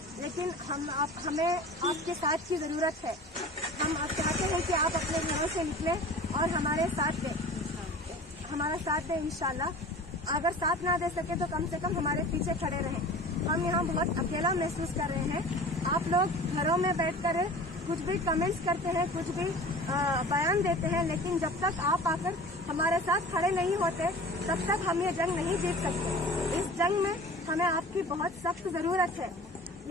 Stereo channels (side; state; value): both; normal; correlation 0.40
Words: लेकिन हमें आपके साथ की जरूरत है। हम आप चाहते हैं कि आप अपने घरों से निकलें और हमारा साथ दें इंशाल्लाह। अगर साथ ना दे सके तो कम से कम हमारे पीछे खड़े रहें। हम यहाँ बहुत अकेला महसूस कर रहे हैं। आप लोग घरों में बैठकर कुछ भी कमेंट्स करते हैं, कुछ भी बयान देते हैं, लेकिन जब तक आप आकर हमारे साथ खड़े नहीं होते तब तक हम ये जंग नहीं जीत सकते। इस जंग में हमें आपकी बहुत सख्त जरूरत है,